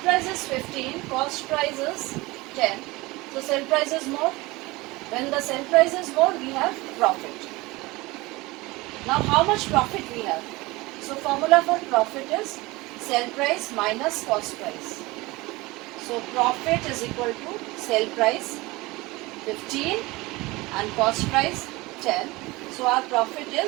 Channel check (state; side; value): quieter; left; 21.9 dB